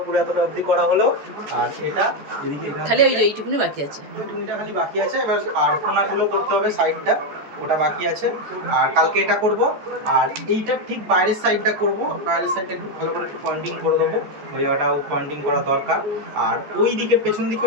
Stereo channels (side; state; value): left; late; 14 ms